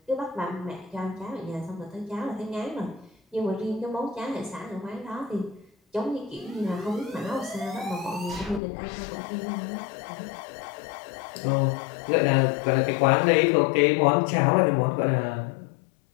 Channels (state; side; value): drops out; right; at 8.6 s